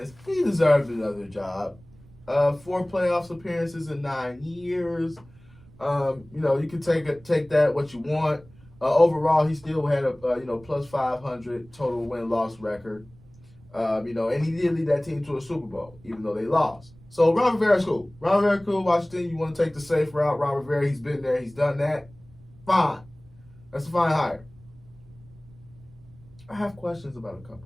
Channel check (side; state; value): right; noise; rumble, 25 dB below the sound